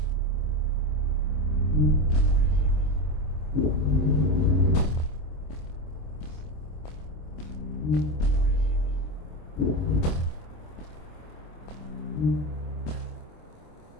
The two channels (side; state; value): right; late; 26 ms